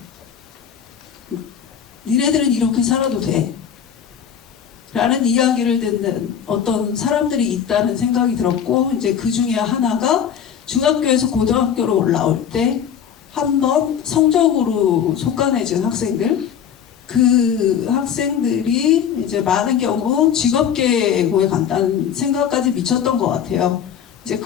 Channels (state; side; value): quieter; right; 8.4 dB